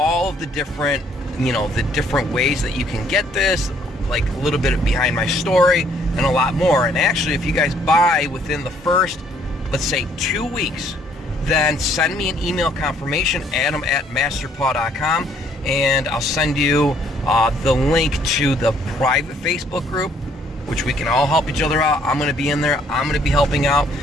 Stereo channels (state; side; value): normal; both; correlation 0.64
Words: of the different, the different ways that you can get this, like a little bit behind my story and a lot more. And actually, if you guys buy within the first, let's say 2 weeks, then send me an email confirmation, adam@masterpaw.com, and I'll send you the link to the private Facebook group, which we can all help each other out. I'm gonna be in there. I'm gonna be helping out,